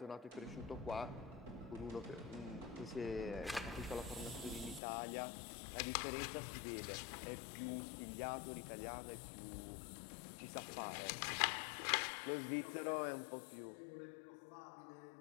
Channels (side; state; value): right; drops out; at 4.8 s